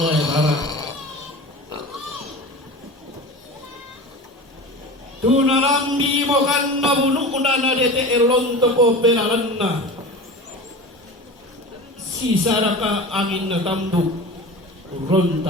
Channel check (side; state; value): both; normal; correlation 0.33